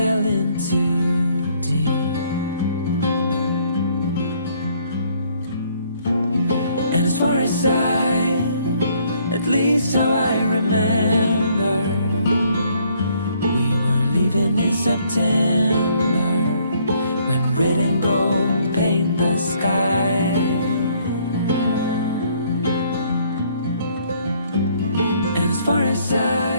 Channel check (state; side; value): inverted; both; correlation -0.65